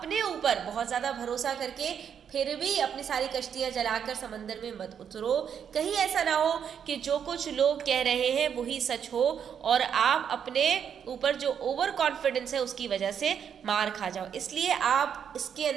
ऊपर बहुत ज़्यादा भरोसा करके फिर भी अपनी सारी कश्तियाँ जलाकर समंदर में मत उतरो। कहीं ऐसा ना हो कि जो कुछ लोग कह रहे हैं वही सच हो और आप अपने ऊपर जो ओवर कॉन्फिडेंस है उसकी वजह से मार खा जाओ। इसलिए आप इसके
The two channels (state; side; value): quieter; left; 8.0 dB